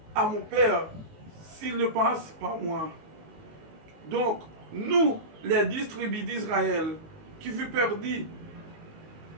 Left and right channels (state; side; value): late; left; 19 ms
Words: à mon Père s'il ne passe par moi. Donc, nous, les 10 tribus d'Israël, qui furent perdus,